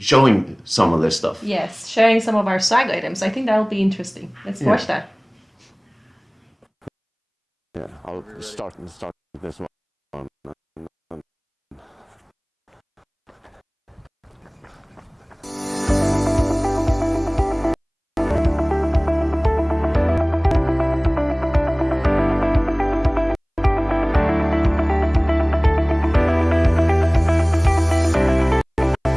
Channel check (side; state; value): both; identical; correlation 1.00